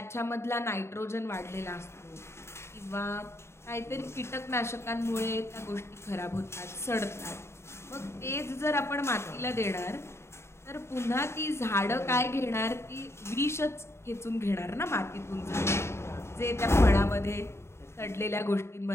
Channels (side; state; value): right; late; 0.13 ms